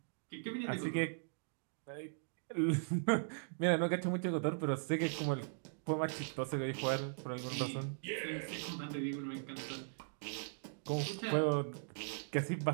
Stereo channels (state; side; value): silent; left; digital silence